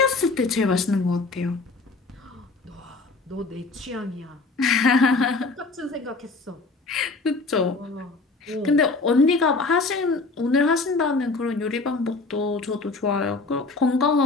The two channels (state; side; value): quieter; right; 3.7 dB